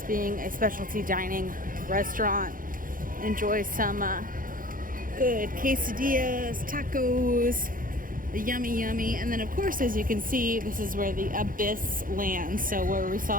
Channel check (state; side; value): late; left; 0.40 ms